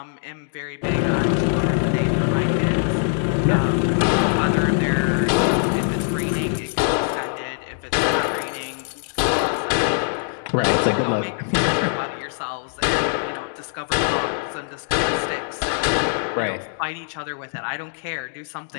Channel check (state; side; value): silent; right; digital silence